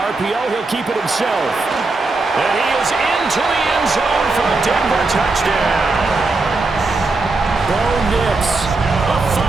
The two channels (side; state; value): left; quieter; 3.5 dB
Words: he'll keep it himself. And he is into the end zone for a Denver touchdown. Bo Nix, a